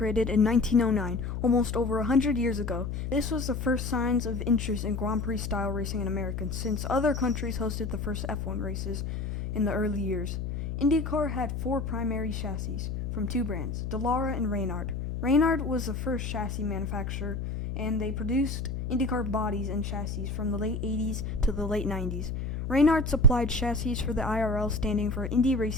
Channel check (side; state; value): left; noise; hum, 4 dB below the sound